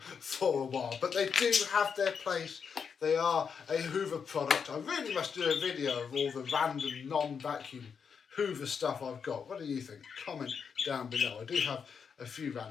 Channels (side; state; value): right; quieter; 6.4 dB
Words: for a while. But they do have their place. They are a Hoover product. I really must do a video of all the random non-vacuum Hoover stuff I've got. What do you think? Comment down below. I do have a few